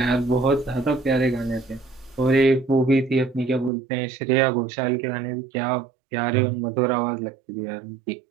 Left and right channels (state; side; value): drops out; left; at 3.7 s